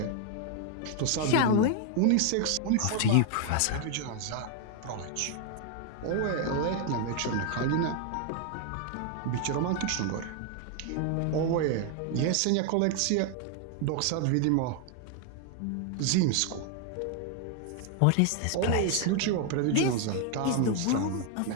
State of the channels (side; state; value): both; different; correlation 0.00